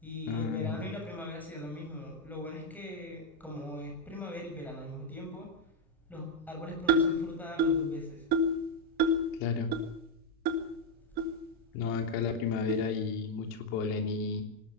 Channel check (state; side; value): normal; both; correlation 0.00